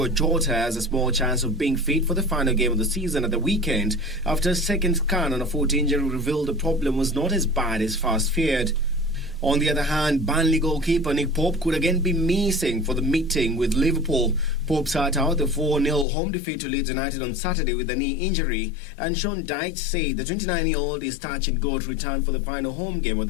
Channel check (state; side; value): drops out; right; at 16.1 s